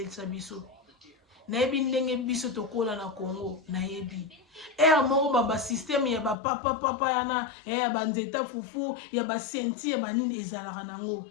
biso nayebi ndenge biso tokola na Congo nayebi ere moko basysteme ya bapapapapa yana ya banzeta fufu ya basenti ya banini ezalaka nango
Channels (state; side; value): drops out; right; at 6.4 s